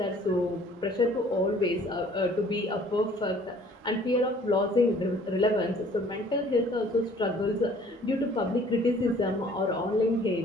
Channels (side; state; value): both; normal; correlation 0.55